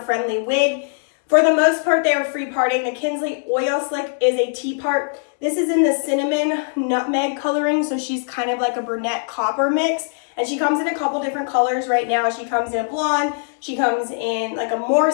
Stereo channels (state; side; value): silent; right; digital silence